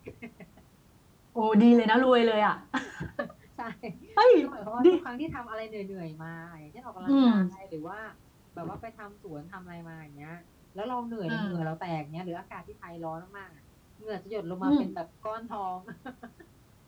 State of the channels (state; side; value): identical; both; correlation 1.00